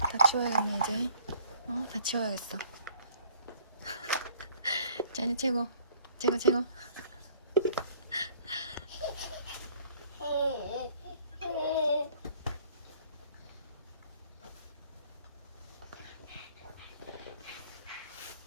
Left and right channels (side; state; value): both; inverted; correlation -0.56